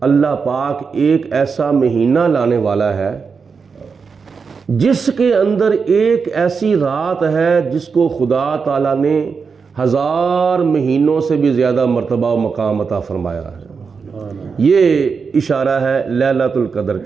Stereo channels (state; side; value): quieter; left; 5.4 dB